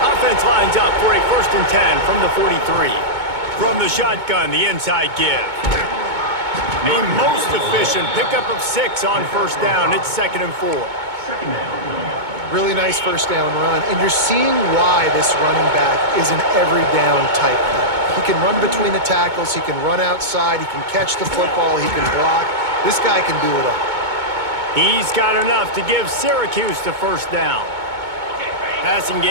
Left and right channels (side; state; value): left; late; 2.2 ms